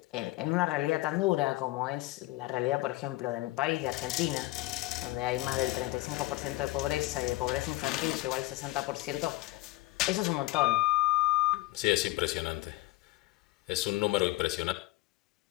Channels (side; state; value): right; quieter; 19.9 dB